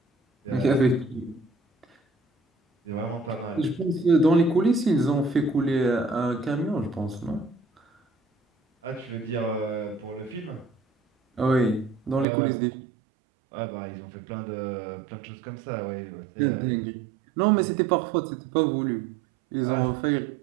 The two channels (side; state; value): left; drops out; at 12.2 s